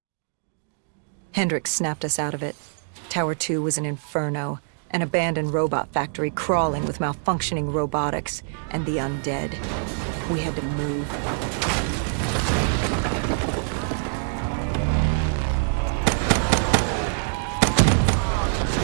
Hendricks snapped us out of it. Tower 2 was an inferno, an abandoned robot factory crawling with malfunctioning robotics and the undead. We had to move.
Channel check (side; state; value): left; silent; digital silence